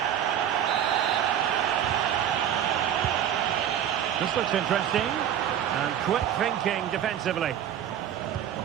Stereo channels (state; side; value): quieter; left; 10.0 dB